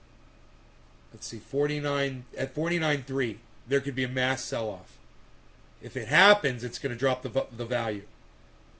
Let's see, 49 at 49.3. There could be a mass sell-off. If it happens, it's going to drop the value.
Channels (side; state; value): both; identical; correlation 1.00